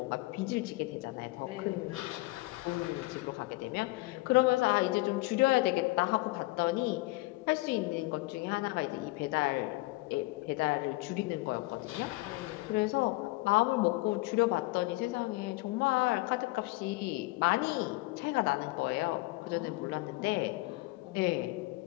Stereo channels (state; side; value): quieter; right; 22.0 dB